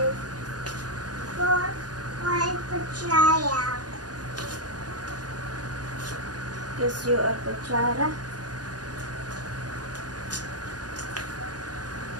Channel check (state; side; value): late; left; 0.69 ms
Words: Because you are kutsara.